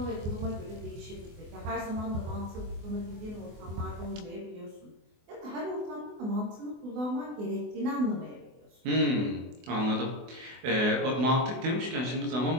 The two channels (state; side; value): late; left; 24 ms